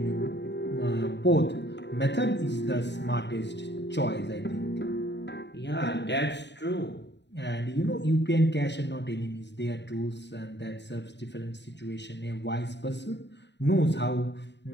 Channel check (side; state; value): right; late; 0.51 ms